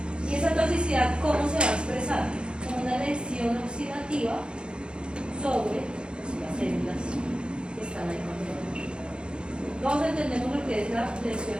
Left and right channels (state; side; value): late; left; 0.053 ms